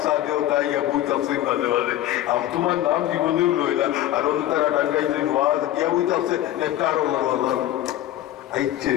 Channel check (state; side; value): quieter; right; 13.4 dB